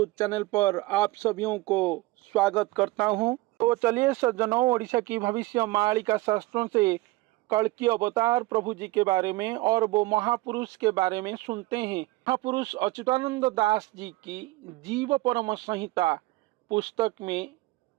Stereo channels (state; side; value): quieter; left; 20.2 dB